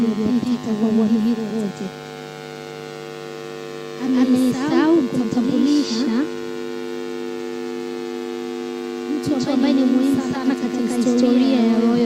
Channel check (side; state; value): both; identical; correlation 1.00